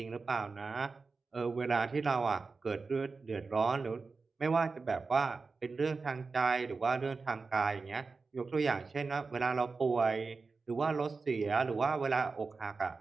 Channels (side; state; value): left; quieter; 4.3 dB